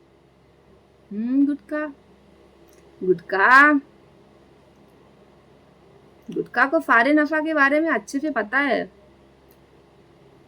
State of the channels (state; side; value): identical; both; correlation 1.00